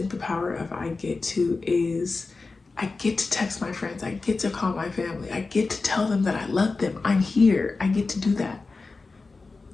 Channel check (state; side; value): quieter; right; 3.9 dB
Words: the power of I get to is I get to text my friends. I get to call my family. I get to tell them that I love them. I'm here. I get to do that.